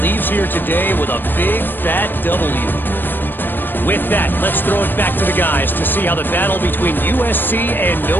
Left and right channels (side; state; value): right; late; 0.094 ms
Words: leaves here today with a big, fat W. With that, let's throw it back to the guys to see how the battle between USC and